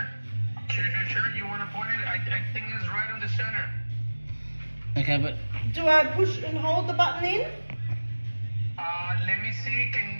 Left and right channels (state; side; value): inverted; both; correlation -1.00